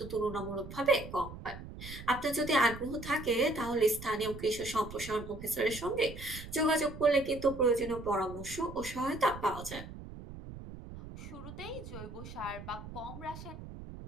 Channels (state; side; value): noise; right; rumble, 12 dB below the sound